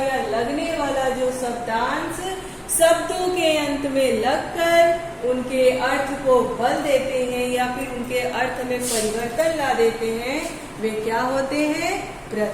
लगने वाला जो शब्दांश शब्दों के अंत में लगकर उनके अर्थ को बदल देते हैं या फिर उनके अर्थ में परिवर्तन ला देते हैं, वे क्या होते हैं,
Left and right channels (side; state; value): both; identical; correlation 1.00